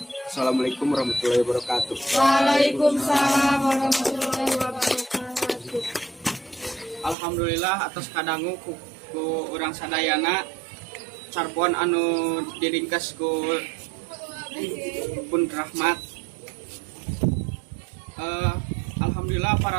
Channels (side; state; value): left; drops out; at 7.2 s